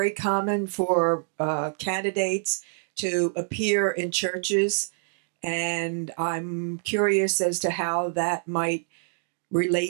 common for candidates to appear in churches, and I'm curious as to how that might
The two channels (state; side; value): silent; left; digital silence